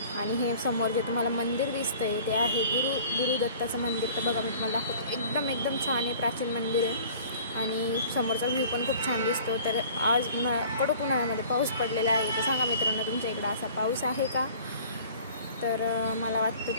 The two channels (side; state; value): both; inverted; correlation -0.48